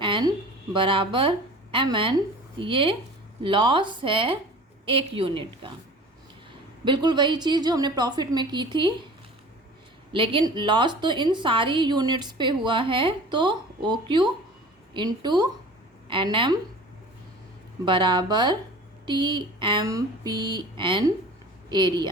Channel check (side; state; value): both; normal; correlation 0.42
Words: N बराबर एम एन। ये लॉस है एक यूनिट का। बिल्कुल वही चीज़ जो हमने प्रॉफिट में की थी, लेकिन लॉस तो इन सारी यूनिट्स पे हुआ है, तो O Q into N M बराबर T M P N